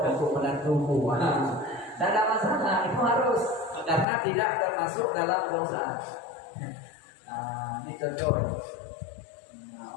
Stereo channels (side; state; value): right; drops out; at 4.0 s